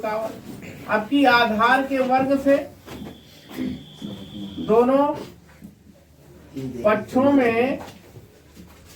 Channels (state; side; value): identical; both; correlation 1.00